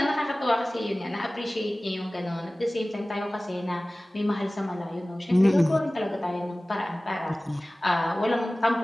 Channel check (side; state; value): both; normal; correlation 0.98